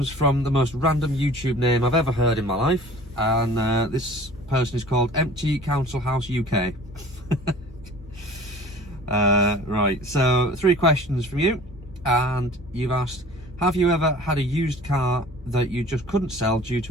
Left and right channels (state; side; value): normal; both; correlation 0.46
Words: from the most random YouTube name I've ever heard in my life, and this person is called Empty Council House UK. Right, so 3 questions from you, and you've asked, have you ever had a used car that you just couldn't sell due